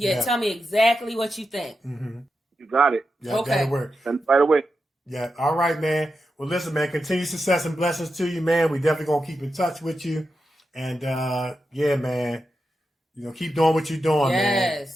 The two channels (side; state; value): both; normal; correlation 0.88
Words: tell me exactly what you think. Mm-hmm. You got it. Yeah, that'll work. Send it right away. Yeah. All right, man. Well, listen, man, continued success and blessings to you, man. We definitely going to keep in touch with you. And, yeah, man, you know, keep doing what you're doing, man.